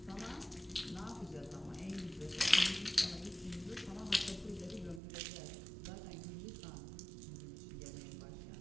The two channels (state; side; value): drops out; left; at 5.0 s